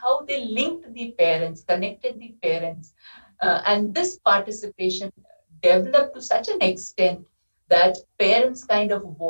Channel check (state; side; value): inverted; both; correlation -1.00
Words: they linked the parents, connected the parents, and this participation developed to such an extent that parents kind of